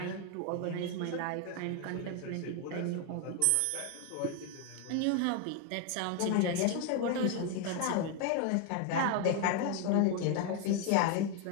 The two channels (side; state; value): both; different; correlation 0.01